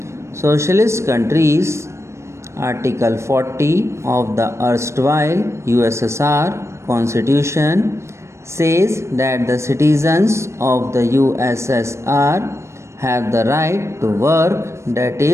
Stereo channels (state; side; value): late; left; 0.13 ms